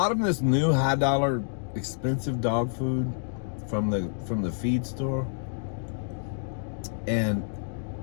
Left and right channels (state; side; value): silent; right; digital silence